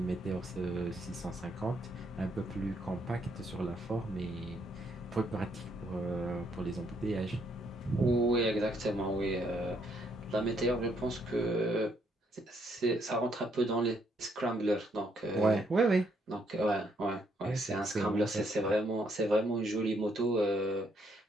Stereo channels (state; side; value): normal; both; correlation 0.72